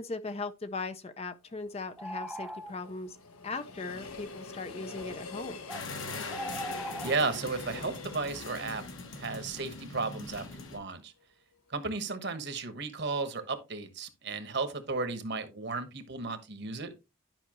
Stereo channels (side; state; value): both; normal; correlation -0.07